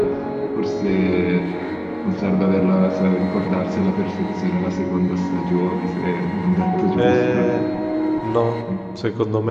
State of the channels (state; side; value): identical; both; correlation 1.00